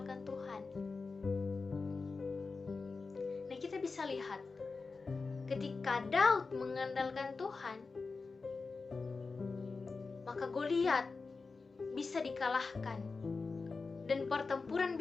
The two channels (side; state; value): right; quieter; 4.2 dB